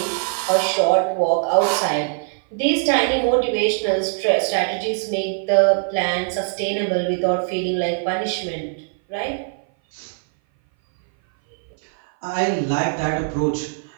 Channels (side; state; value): left; silent; 59 dB below the other